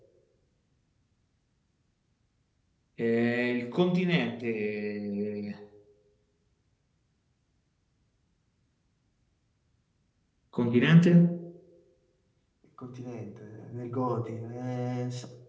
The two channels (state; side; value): identical; both; correlation 1.00